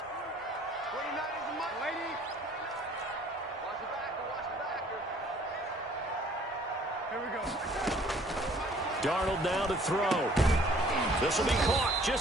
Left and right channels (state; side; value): normal; both; correlation 0.56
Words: Darnold now to throw. This will be caught